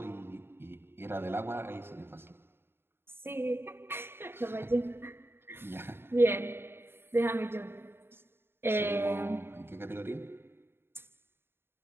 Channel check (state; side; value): late; left; 0.11 ms